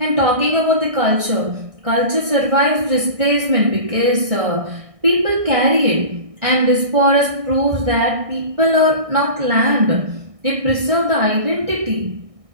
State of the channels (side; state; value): left; late; 1.6 ms